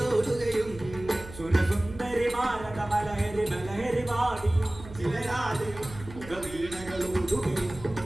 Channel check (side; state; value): right; noise; hum, 15 dB below the sound